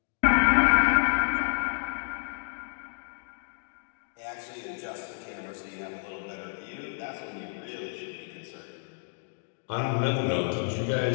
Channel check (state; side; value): silent; right; digital silence